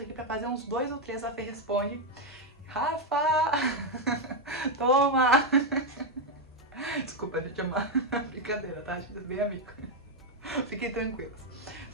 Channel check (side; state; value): both; normal; correlation 0.03